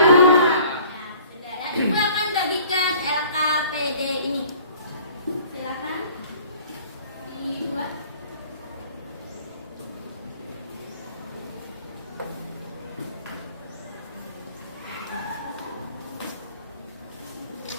Sudah ya. Ibu akan bagikan LKPD ini. Silakan dibuat.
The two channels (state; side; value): inverted; both; correlation -0.52